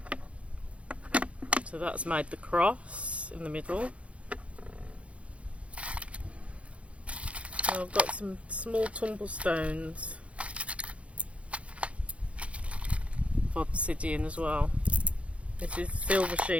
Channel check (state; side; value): late; left; 0.063 ms